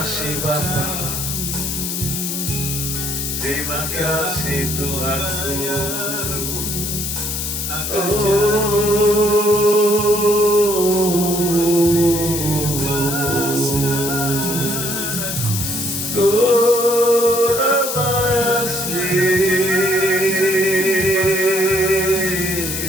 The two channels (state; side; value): noise; left; hiss, 3 dB below the sound